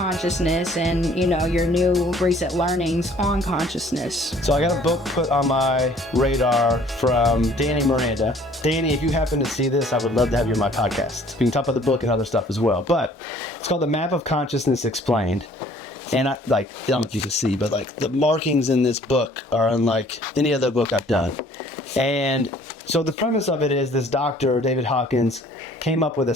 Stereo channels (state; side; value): normal; both; correlation 0.56